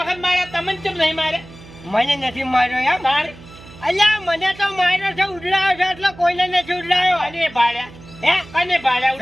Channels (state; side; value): noise; right; hum, 19 dB below the sound